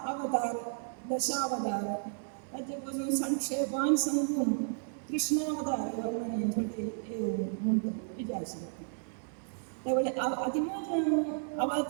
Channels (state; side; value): silent; left; digital silence